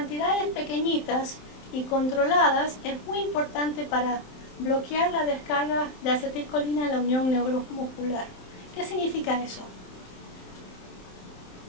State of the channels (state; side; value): late; right; 27 ms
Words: pequeñitas y controladas es muy importante para bloquear la descarga de acetilcolina en la unión neuromuscular. ¿Qué significa eso?